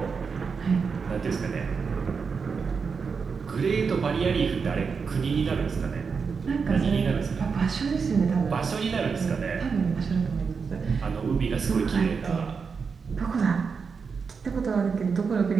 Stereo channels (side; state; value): left; quieter; 5.5 dB